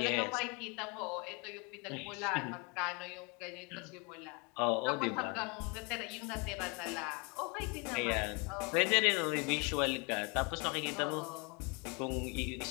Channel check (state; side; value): quieter; right; 31.7 dB